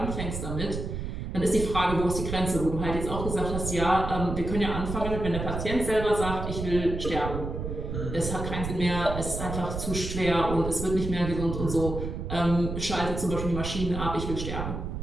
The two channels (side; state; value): right; noise; rumble, 5 dB below the sound